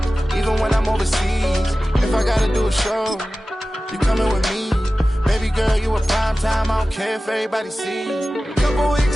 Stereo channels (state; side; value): normal; both; correlation 0.96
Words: even when I'm overseas. If I gotta do a show, you coming with me. Baby girl, you a prime time. I don't care if everybody see. Couple